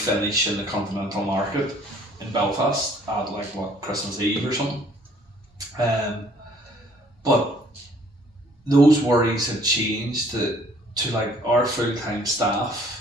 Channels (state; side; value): normal; both; correlation 0.59